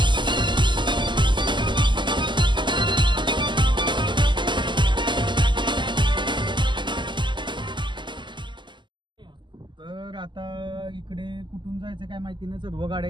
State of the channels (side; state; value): left; late; 0.22 ms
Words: तर आता इकडे कुठून जायचं काय माहिती नाही. सर्व